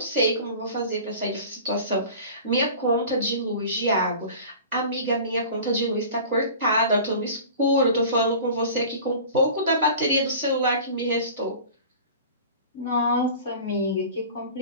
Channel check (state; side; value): inverted; both; correlation -0.40